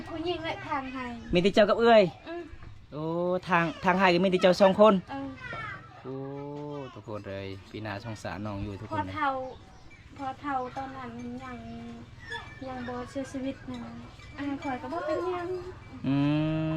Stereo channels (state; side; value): identical; both; correlation 1.00